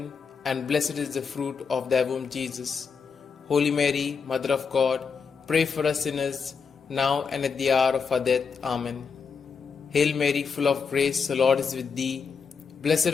and blessed is the fruit of thy womb, Jesus. Holy Mary, Mother of God, pray for us sinners, now and at the hour of our death. Amen. Hail Mary, full of grace, the Lord is with thee. Blessed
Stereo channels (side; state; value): right; quieter; 5.7 dB